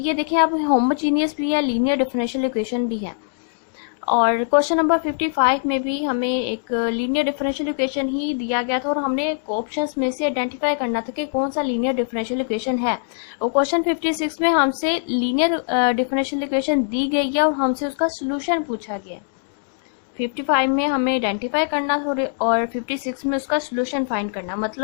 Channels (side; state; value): right; silent; digital silence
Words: देखें, अब होमोजीनियस भी है, लीनियर डिफरेंशियल इक्वेशन भी है। और क्वेश्चन नंबर 55 में भी हमें एक लीनियर डिफरेंशियल इक्वेशन ही दिया गया था और हमने ऑप्शंस में से आइडेंटिफाई करना था कि कौन सा लीनियर डिफरेंशियल इक्वेशन है। और क्वेश्चन 56 में हमसे लीनियर डिफरेंशियल इक्वेशन दी गई है और हमसे उसका सोल्यूशन पूछा गया। 55 में हमें आइडेंटिफाई करना और 56 में उसका सोल्यूशन फाइंड करना।